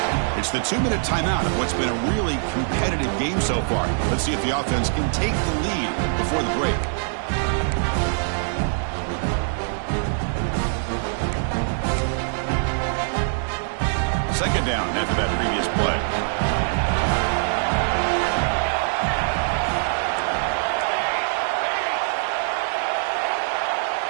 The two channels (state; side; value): silent; left; digital silence